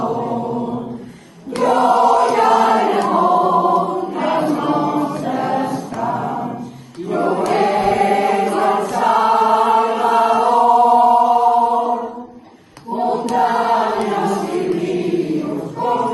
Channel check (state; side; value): identical; both; correlation 1.00